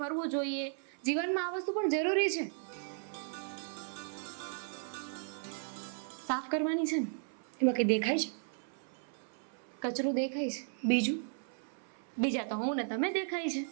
ફરવું જોઈએ. જીવનમાં આ વસ્તુ પણ જરૂરી છે. સાફ કરવાની છે ને, એમાં કંઈ દેખાય છે? કચરું દેખાય છે. બીજું? બીજા તો હું ને તમે દેખાય છે.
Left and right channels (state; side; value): silent; left; 54 dB below the other